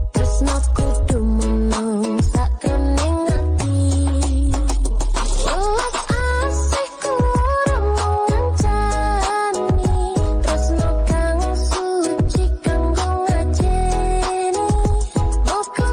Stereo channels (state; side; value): identical; both; correlation 1.00